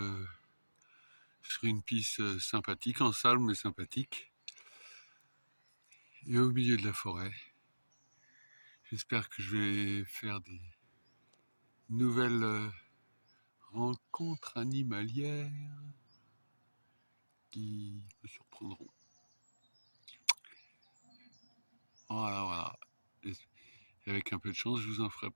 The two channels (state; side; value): inverted; both; correlation -1.00